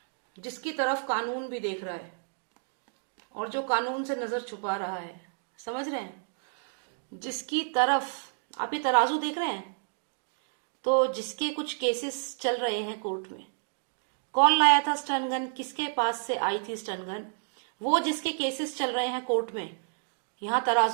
जिसकी तरफ कानून भी देख रहा है और जो कानून से नजर छुपा रहा है, समझ रहे हैं? जिसकी तरफ, आप ये तराजू देख रहे हैं, तो जिसके कुछ केसेस चल रहे हैं कोर्ट में, कौन लाया था स्टन गन, किसके पास से आई थी स्टन गन, वो जिसके केसेस चल रहे हैं कोर्ट में, यहाँ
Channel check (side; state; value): left; silent; digital silence